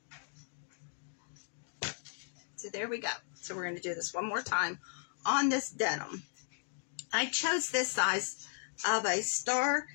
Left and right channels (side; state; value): right; silent; digital silence